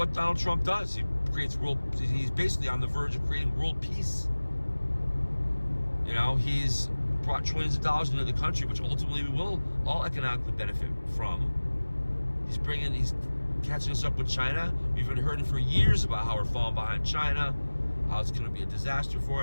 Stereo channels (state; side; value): inverted; both; correlation -1.00